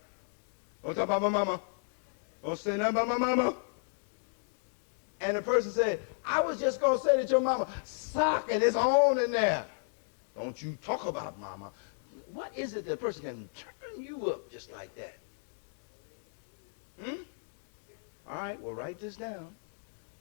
Don't talk about my mama. Don't say nothing about my mama. And the person said, I was just going to say that your mama socking is on in there. Don't you talk about mama. What is it that a person can turn you up just like that? All right, well, write this down.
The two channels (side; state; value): right; silent; digital silence